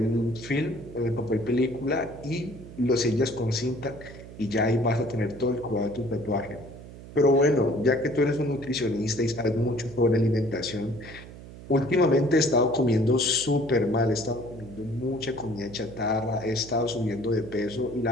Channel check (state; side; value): noise; right; hum, 16 dB below the sound